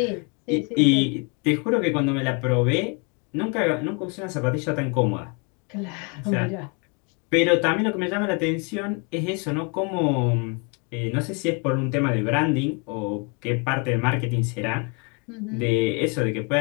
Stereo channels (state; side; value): quieter; right; 33.6 dB